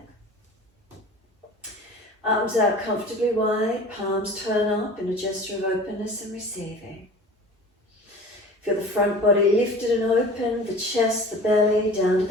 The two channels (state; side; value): normal; both; correlation 0.41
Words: Arms out comfortably wide, palms turn up in a gesture of openness and receiving. Feel the front body lifted and open, the chest, the belly, down to